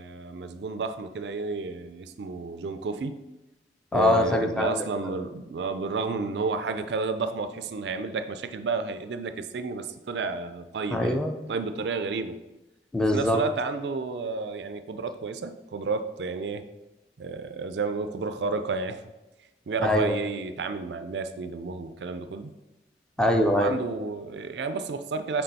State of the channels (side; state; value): both; normal; correlation 0.36